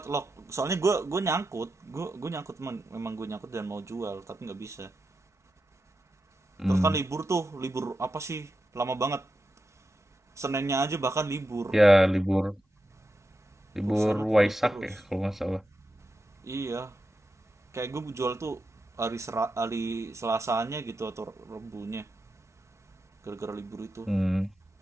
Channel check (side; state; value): both; normal; correlation 0.88